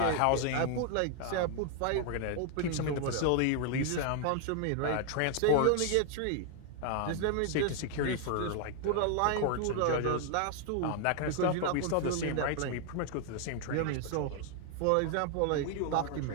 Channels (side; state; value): both; different; correlation 0.00